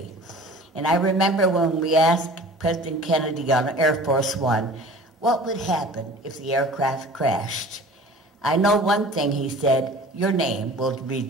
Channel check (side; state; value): both; normal; correlation 0.43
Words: And I remember when we asked President Kennedy on Air Force One, what would happen if the aircraft crashed? I know one thing, he said, "Your name will be